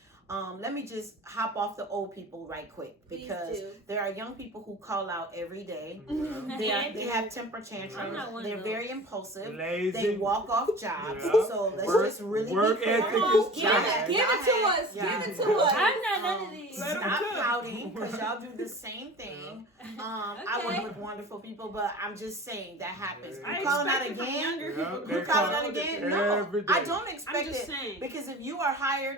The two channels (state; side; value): normal; both; correlation 0.39